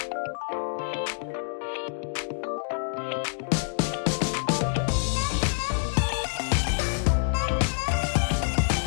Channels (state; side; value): silent; right; digital silence